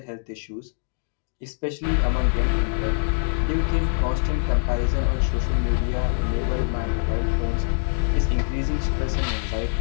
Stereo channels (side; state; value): right; silent; digital silence